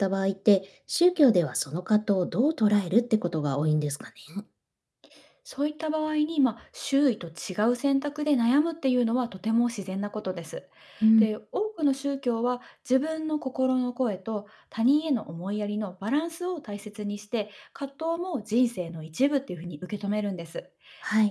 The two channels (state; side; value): identical; both; correlation 1.00